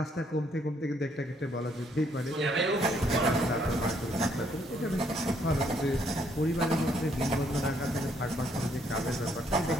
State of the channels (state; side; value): normal; both; correlation 0.69